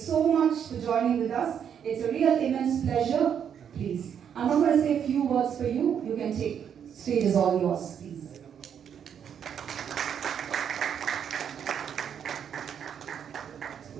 much for joining with us. It's a real immense pleasure. Please. I'm not going to say a few words for you. You can take. Stage is all yours, please.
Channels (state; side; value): quieter; left; 8.3 dB